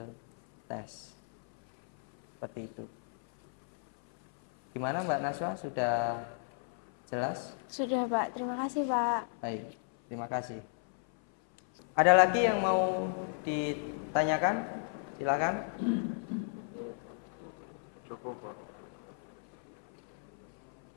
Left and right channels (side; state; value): right; silent; 55 dB below the other